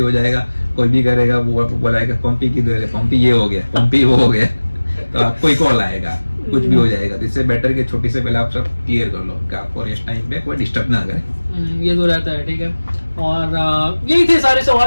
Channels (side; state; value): both; inverted; correlation -1.00